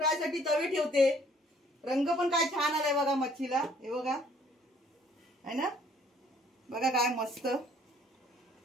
साठी तवे ठेवते। रंग पण काय छान आलाय बघा मच्छीला, हे बघा, है ना? बघा काय मस्त.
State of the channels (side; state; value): both; normal; correlation 0.60